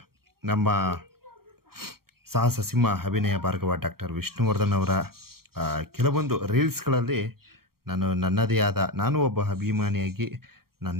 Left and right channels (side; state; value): left; late; 0.94 ms